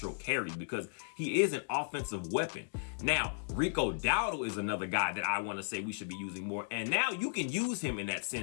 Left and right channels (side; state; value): right; silent; digital silence